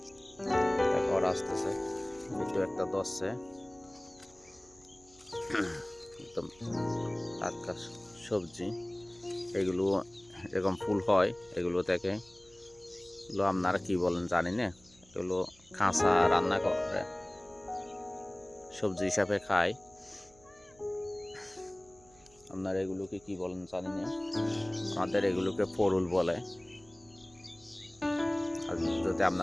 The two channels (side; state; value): right; noise; hum, 28 dB below the sound